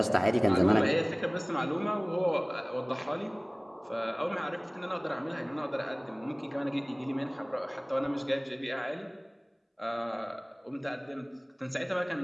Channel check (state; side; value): identical; both; correlation 1.00